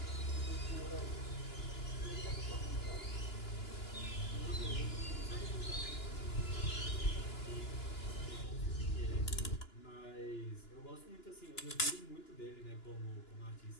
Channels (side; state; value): right; late; 2.9 ms